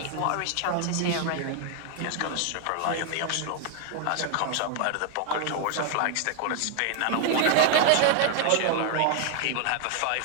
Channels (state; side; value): different; both; correlation 0.00